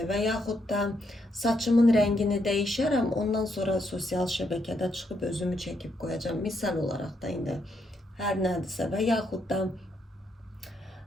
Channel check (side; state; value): both; normal; correlation 0.77